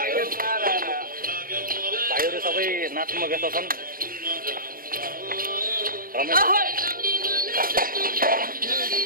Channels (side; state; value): left; late; 0.42 ms